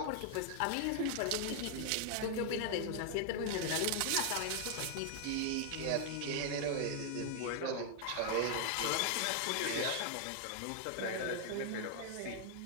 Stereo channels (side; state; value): both; different; correlation 0.00